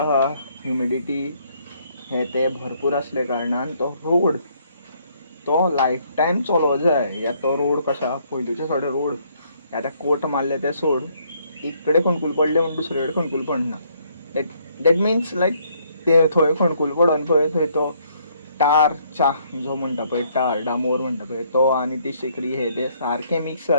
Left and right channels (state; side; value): inverted; both; correlation -0.68